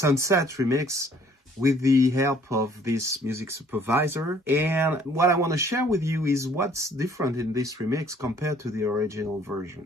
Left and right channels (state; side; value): normal; both; correlation 0.59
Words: remix with the help of this music supervisor, and what I want to share with you is what's different in this remix compared to the original